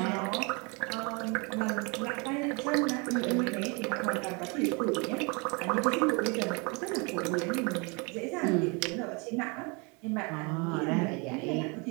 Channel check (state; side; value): quieter; left; 30.9 dB